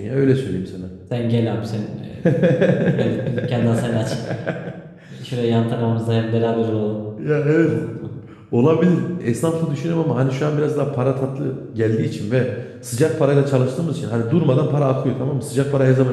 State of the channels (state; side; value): identical; both; correlation 1.00